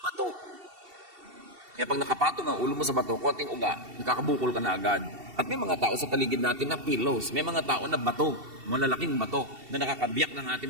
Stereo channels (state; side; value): late; left; 2.7 ms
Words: bato. Kaya pag nakapatong ang ulo mo sa bato, konting uga, nakakabukol ka na agad. At may mga tao sa paligid natin na pillows. May mga tao na bato, malalaking bato, na nakakabiyak ng ating